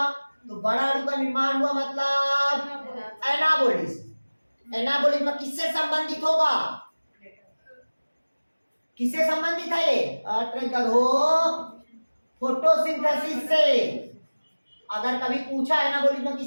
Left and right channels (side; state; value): both; inverted; correlation -1.00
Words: तो बड़ा अणु का निर्माण हुआ मतलब एनाबॉलिज्म। एनाबॉलिज्म किससे संबंधित होगा? किससे संबंधित है ये? फोटोसिंथेसिस से। अगर कभी पूछा एनाबॉलिज्म